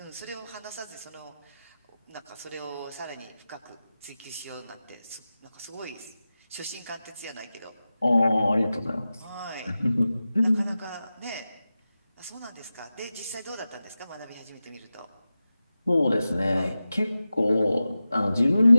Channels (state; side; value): inverted; both; correlation -0.94